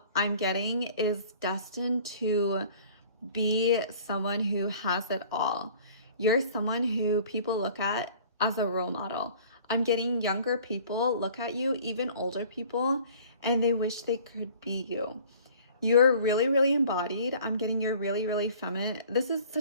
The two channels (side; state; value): both; inverted; correlation -0.50